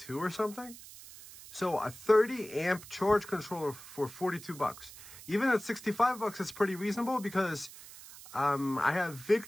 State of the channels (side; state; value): right; noise; hiss, 16 dB below the sound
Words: or something. So a 30 amp charge controller for $42. Even at $65, it's pretty reasonable because I have